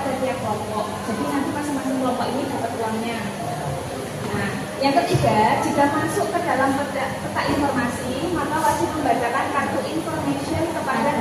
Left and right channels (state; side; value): identical; both; correlation 1.00